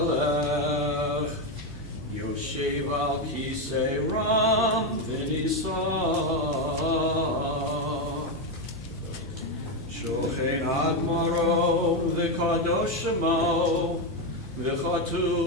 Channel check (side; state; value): right; noise; hum, 16 dB below the sound